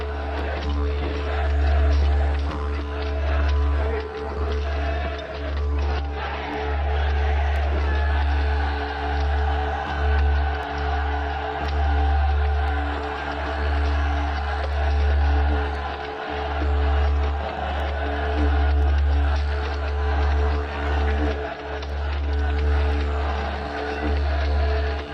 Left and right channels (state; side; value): identical; both; correlation 1.00